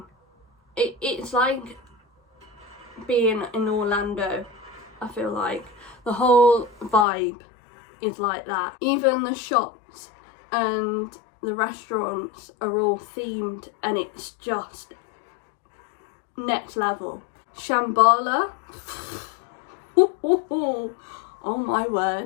it's like being in Orlando. I feel like the whole vibe is like that. Even the shops and the restaurants are all themed, and it's just next level. Shambhala, oh my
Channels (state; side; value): drops out; right; at 7.1 s